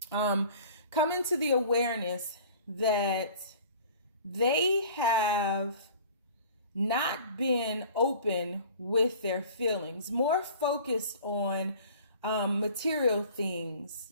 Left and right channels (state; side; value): inverted; both; correlation -0.46